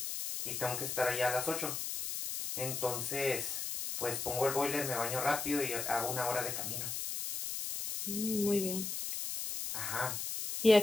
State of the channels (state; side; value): noise; left; hiss, 4 dB below the sound